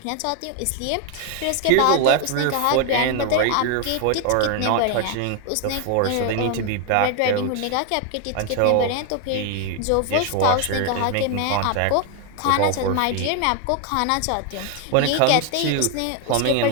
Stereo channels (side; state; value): both; different; correlation 0.00